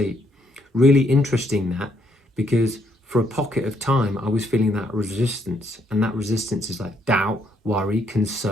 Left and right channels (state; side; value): normal; both; correlation 0.72